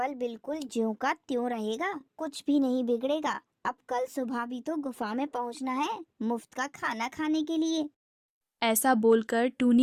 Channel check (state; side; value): identical; both; correlation 1.00